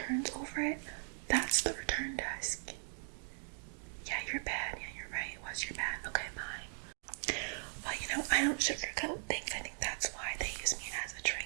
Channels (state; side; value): silent; left; 52 dB below the other